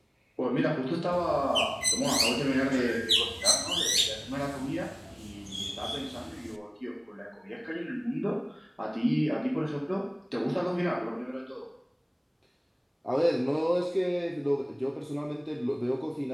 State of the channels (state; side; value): identical; both; correlation 1.00